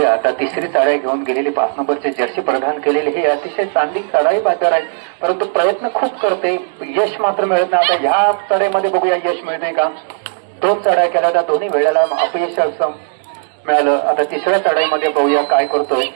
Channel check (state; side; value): silent; left; digital silence